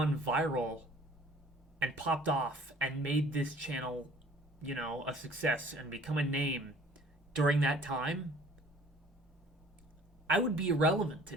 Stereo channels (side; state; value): both; normal; correlation 0.52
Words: viral and popped off and made this channel, a success and become a name during that time, I would be irrelevant